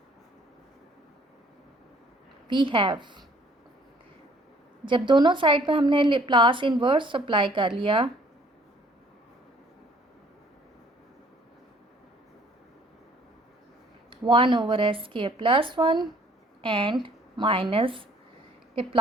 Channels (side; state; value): both; normal; correlation 0.58